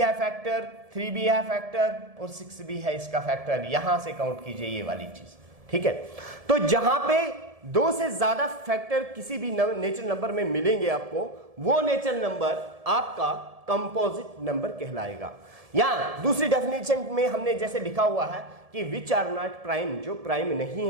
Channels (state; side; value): late; left; 1.7 ms